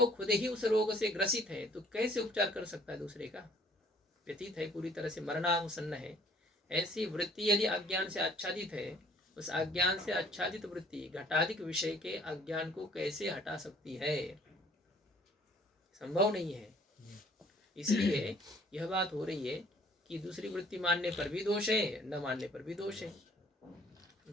खुद ही उस रोग से ग्रसित है तो कैसे उपचार कर सकता है दूसरे का? व्यतीत है, पूरी तरह से मरणासन्न है। ऐसी वृत्ति यदि अज्ञान से आच्छादित है, उस अज्ञान से आच्छादित वृत्ति घटाधिक विषय के अज्ञान को कैसे हटा सकती है? संभव नहीं है। इसलिए यह बात हो रही है कि दूसरी वृत्ति मानने पर भी दोष है, न मानने पर भी दोष है।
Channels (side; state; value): both; normal; correlation 0.57